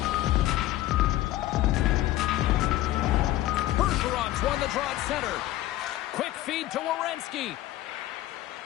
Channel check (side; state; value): right; quieter; 15.1 dB